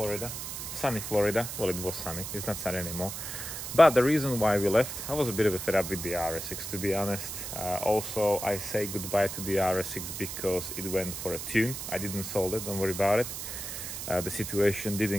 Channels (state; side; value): noise; right; hiss, 7 dB below the sound